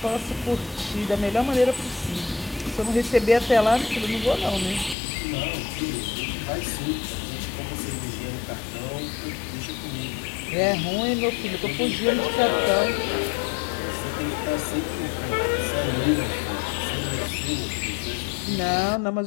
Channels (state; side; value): drops out; right; at 5.0 s